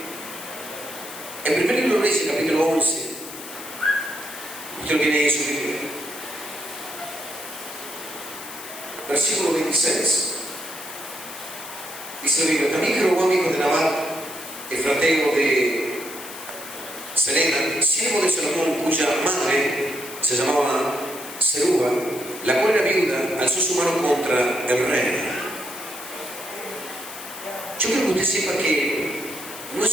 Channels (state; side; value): noise; left; hiss, 13 dB below the sound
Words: en primer libro de Reyes, capítulo 11, usted lo tiene ahí en su Biblia, versículo 26. Dice la Biblia: también Jeroboam, hijo de Nabat, efrateo de Sereda, siervo de Salomón, cuya madre se llamaba Zeruba, la cual era viuda, alzó su mano contra el rey. Yo quiero que usted sepa que no es